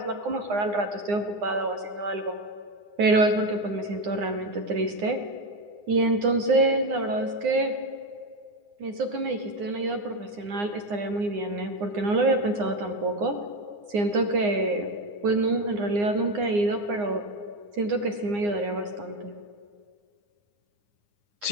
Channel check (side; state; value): left; late; 9.7 ms